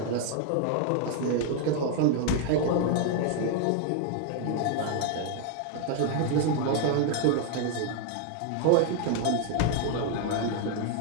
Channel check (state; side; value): different; both; correlation 0.00